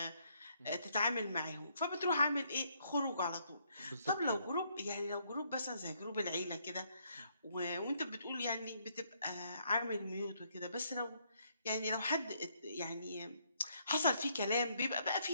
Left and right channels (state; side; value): inverted; both; correlation -0.71